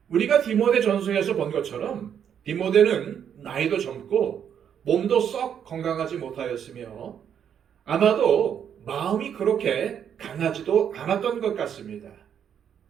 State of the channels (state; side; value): quieter; left; 8.5 dB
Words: 우리가 디모데 전서에서 본 것처럼 디모데는 나이도 젊고 몸도 썩 건강하지 못하였으며 아마도 마음이 그렇게 강하지도 않았던 것 같습니다.